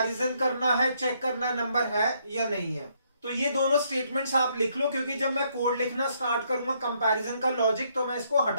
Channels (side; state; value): both; inverted; correlation -0.71